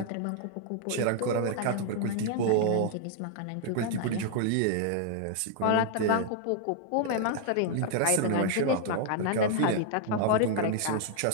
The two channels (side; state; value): both; different; correlation -0.01